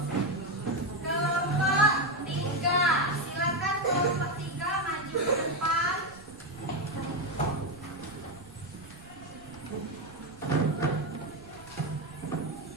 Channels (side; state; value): right; noise; rumble, 21 dB below the sound